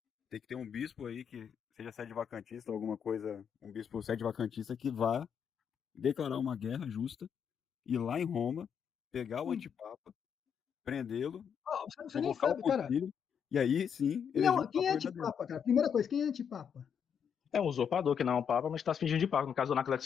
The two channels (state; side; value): quieter; right; 7.6 dB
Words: tem que ter um bispo aí que seja sede vacantista, alguma coisa, um bispo sede vacantista que vá declarar uma guerra justa, ir lá em Roma, pegar o antipapa, prendê-lo, Você nem convocar o sabe, cara. concílio, e aí sim eleger um Quem é papa verdadeiro. antipapa, cara? Primeira coisa, quem é antipapa? É um usurpador que não é um papa, mas está se fingindo de papa. No caso do